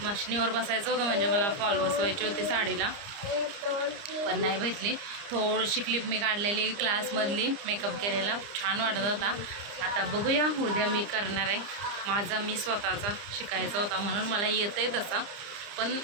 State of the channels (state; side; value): late; left; 30 ms